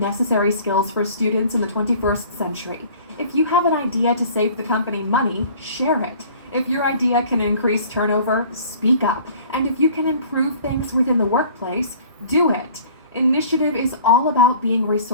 skills for students in the 21st century. If you have an idea to save the company money, share it. If your idea can increase turnover, speak up. And if you can improve things within the workplace, do it. Initiative is all about being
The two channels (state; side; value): inverted; both; correlation -0.49